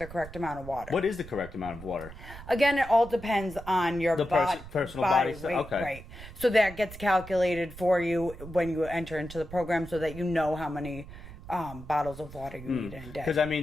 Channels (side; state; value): right; noise; rumble, 15 dB below the sound